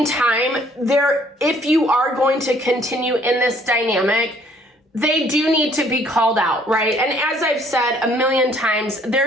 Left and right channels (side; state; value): both; normal; correlation 0.61